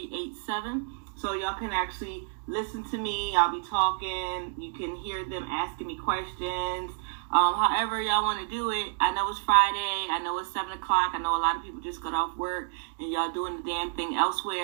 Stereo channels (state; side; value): silent; left; digital silence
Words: So y'all can actually listen to me. I'll be talking. You can hear them asking me questions. However y'all want to do it. I know it's Friday. I know it's 7 o'clock. I know a lot of people just got off work and y'all doing the damn thing